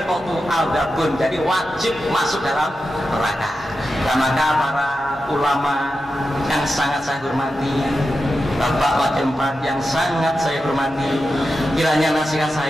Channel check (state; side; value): normal; both; correlation 0.90